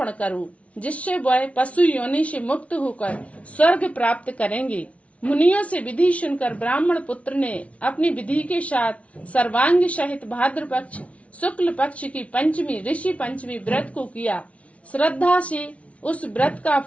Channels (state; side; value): late; right; 0.064 ms